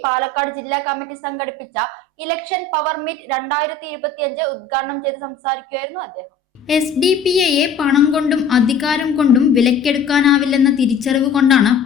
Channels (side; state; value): right; quieter; 4.2 dB